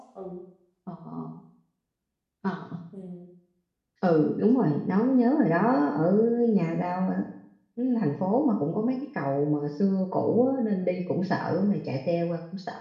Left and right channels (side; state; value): both; identical; correlation 1.00